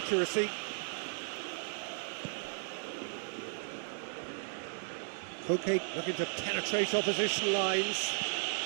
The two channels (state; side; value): silent; left; 54 dB below the other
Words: Koke looking to penetrate opposition lines.